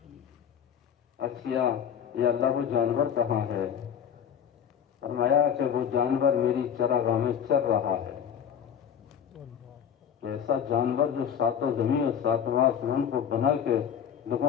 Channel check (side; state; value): right; quieter; 8.4 dB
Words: اچھا یہ اللہ وہ جانور کہاں ہے؟ فرمایا کہ وہ جانور میری چراگاہ میں چر رہا ہے۔ ایسا جانور جو ساتوں زمین اور ساتواں آسمان کو بنا کے